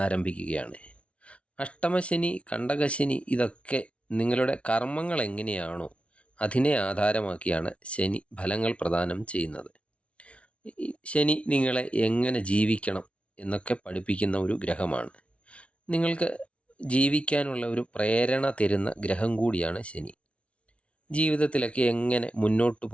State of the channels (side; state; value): right; late; 0.061 ms